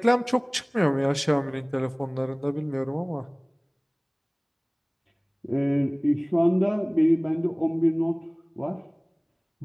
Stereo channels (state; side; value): identical; both; correlation 1.00